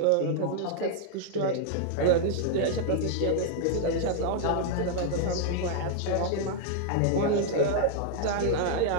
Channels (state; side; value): different; both; correlation -0.01